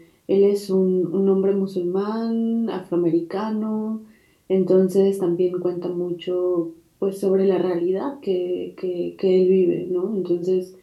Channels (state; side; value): identical; both; correlation 1.00